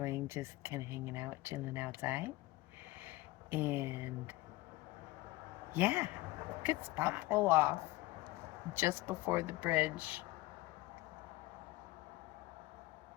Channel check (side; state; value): right; quieter; 19.0 dB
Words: just kind of hanging out, chilling outside. And yeah, good spot. Pull off just before the bridge.